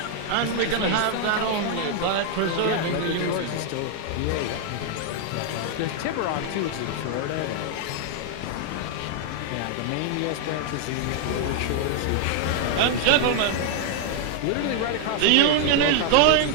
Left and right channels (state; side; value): different; both; correlation 0.00